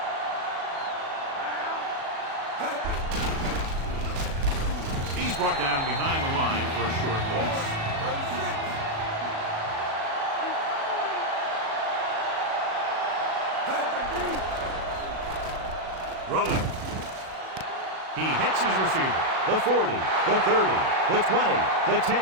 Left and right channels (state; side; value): late; left; 37 ms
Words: He's brought down behind the line for a short loss. Rolling. He hits his receiver. The 40, the 30, the 20, the 10.